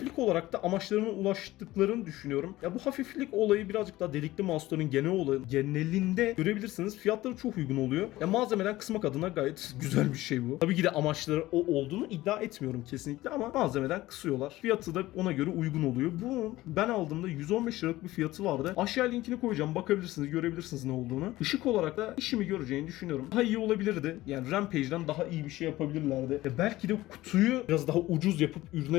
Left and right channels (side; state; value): right; quieter; 17.1 dB